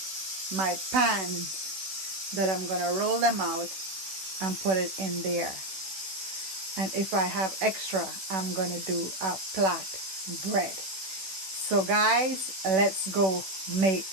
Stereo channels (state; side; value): late; left; 16 ms